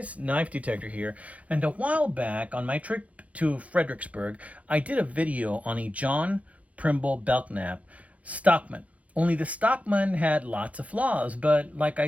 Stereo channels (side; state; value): left; late; 0.067 ms